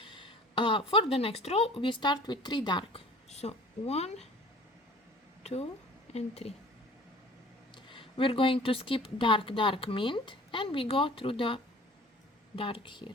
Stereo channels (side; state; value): both; normal; correlation 0.47